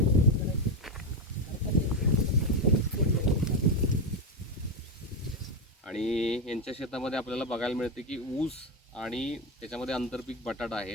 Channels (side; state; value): both; normal; correlation 0.09